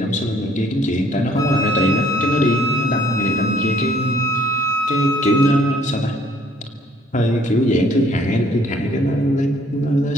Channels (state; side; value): normal; both; correlation 0.60